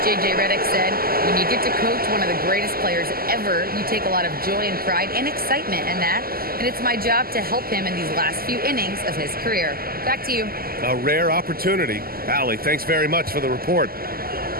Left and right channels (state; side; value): late; left; 0.43 ms